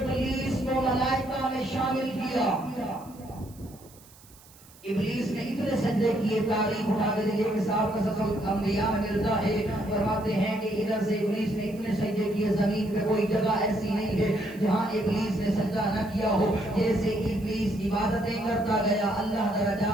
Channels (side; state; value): right; noise; hiss, 24 dB below the sound